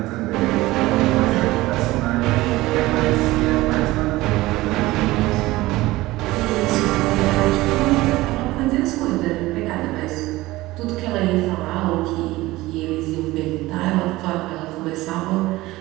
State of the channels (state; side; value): quieter; left; 18.6 dB